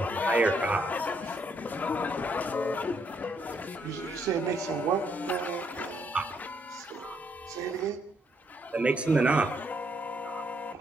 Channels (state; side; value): normal; both; correlation 0.73